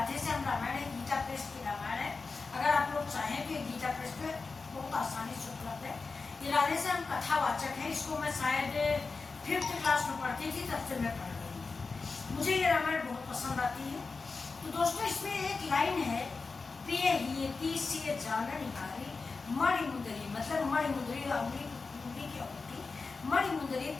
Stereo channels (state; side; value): quieter; right; 4.3 dB